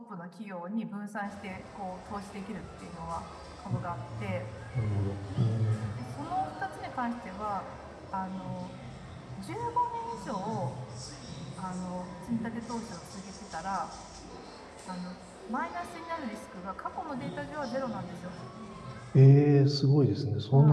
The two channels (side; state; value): both; identical; correlation 1.00